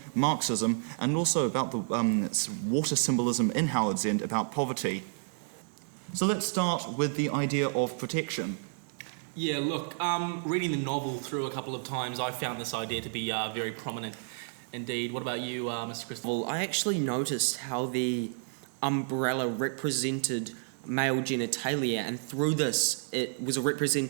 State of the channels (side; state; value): left; silent; digital silence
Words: Marxism, and also about the water symbolism in Howard's End about poverty. So let's start with the idea of protection. Yeah, look, reading the novel through a couple of times, I found this idea to be very prominent indeed. What about you, Mr. Christie? Well, I actually noticed how the umbrella represented male genitalia, and through this it was a